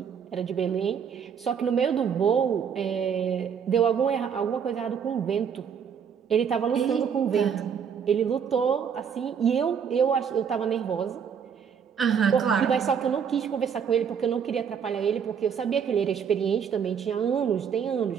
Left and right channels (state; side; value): quieter; left; 7.3 dB